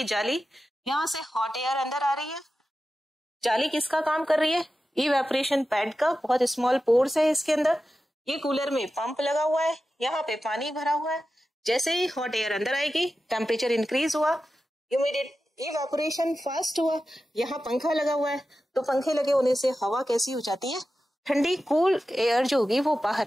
जाली, यहाँ से हॉट एयर अंदर आ रही है। जाली किसका काम कर रही है? इवेपोरेशन पैड का। बहुत स्मॉल पोर्स है इसके अंदर। ये कूलर में पंप लगा हुआ है, यहाँ पे पानी भरा हुआ है। जैसे ही हॉट एयर अंदर आएगी, टेम्परेचर इंक्रीज हुआ, इवेपोरेशन फास्ट हुआ। यहाँ पंखा लगा हुआ है, तो पंखे लगे होने से हवा कैसी हो जाती है? ठंडी। कूल एयर जो होगी वो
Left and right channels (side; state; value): both; normal; correlation 0.93